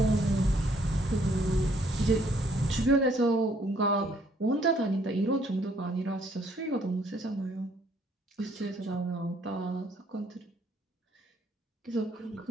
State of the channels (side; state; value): both; normal; correlation 0.65